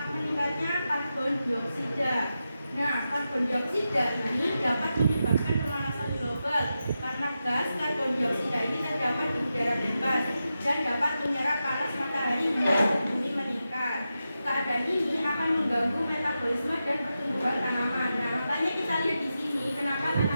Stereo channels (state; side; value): inverted; both; correlation -0.90